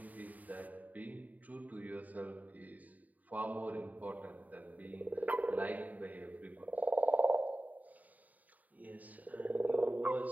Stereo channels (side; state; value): left; late; 0.076 ms